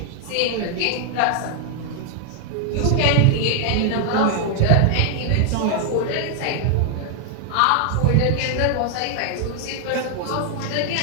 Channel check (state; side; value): different; both; correlation 0.00